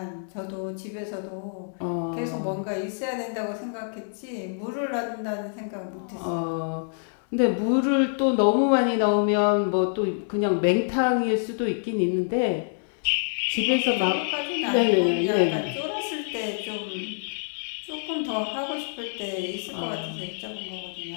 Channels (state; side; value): silent; right; digital silence